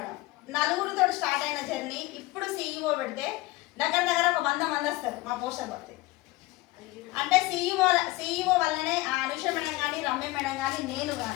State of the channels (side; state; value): right; quieter; 20.1 dB